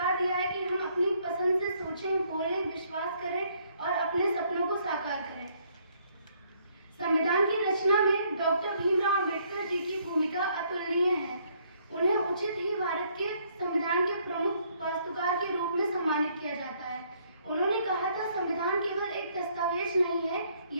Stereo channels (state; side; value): inverted; both; correlation -0.67